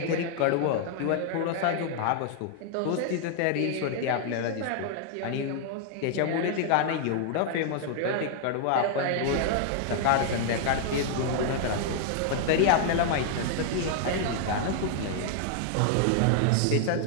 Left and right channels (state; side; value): different; both; correlation 0.00